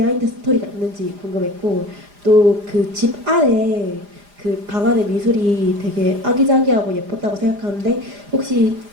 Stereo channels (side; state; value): left; late; 4.9 ms